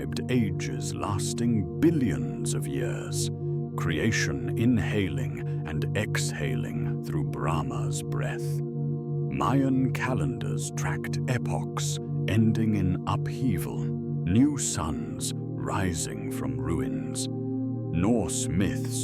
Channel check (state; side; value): identical; both; correlation 1.00